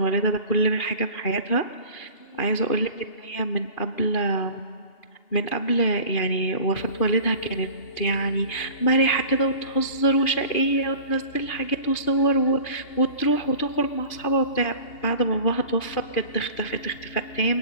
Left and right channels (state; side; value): late; right; 2.8 ms